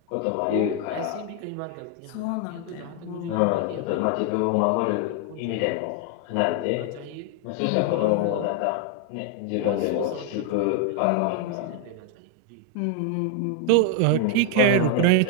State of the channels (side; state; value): both; different; correlation 0.01